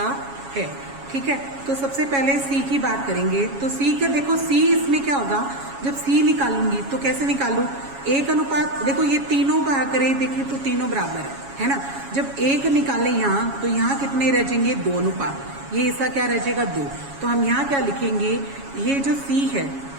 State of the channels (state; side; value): late; left; 7.2 ms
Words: है। ठीक है, तो सबसे पहले सी की बात करेंगे। तो सी का देखो, सी इसमें क्या होगा, जब सी निकालूंगी तो कैसे निकालूं, 1:, देखो ये तीनों भाग करें, देखिए तो तीनों बराबर है ना। जब 1 निकाले यहाँ तो यहाँ कितने रह जाएंगे, 2 अनुपात, ये हिस्सा क्या रह जाएगा, 2। तो हम यहाँ क्या लिखेंगे, ये जो सी है,